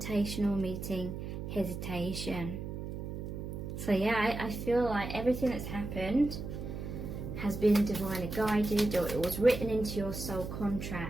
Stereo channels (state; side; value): noise; right; hum, 6 dB below the sound